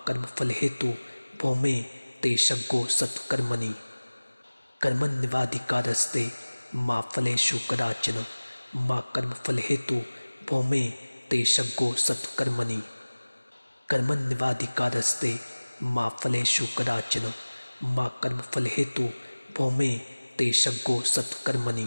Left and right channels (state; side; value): inverted; both; correlation -1.00